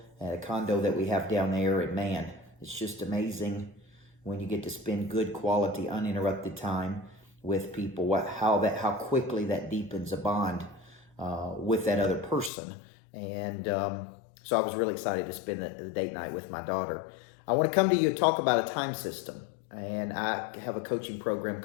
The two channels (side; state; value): right; drops out; at 12.5 s